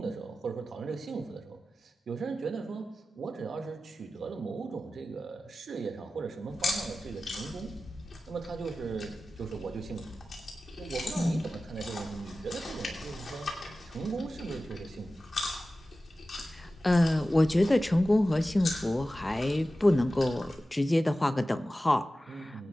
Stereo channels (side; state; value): both; normal; correlation 0.95